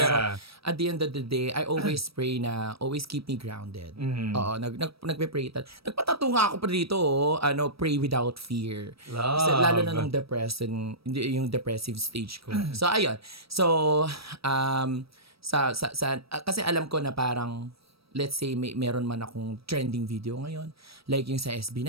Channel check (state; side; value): late; left; 0.76 ms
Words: at the end of the day, I always pray na always keep me grounded. Oo, nagpe-pray. Nagpatato nga ako pa dito, pray without fear. Love. Kasi lalo na nung yung depressive stage ko. So, ayun. So, kasi alam ko na parang let's say meron man akong trending video ngayon, like yung sa